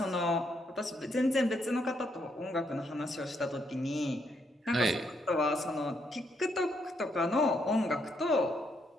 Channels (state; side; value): normal; both; correlation 0.75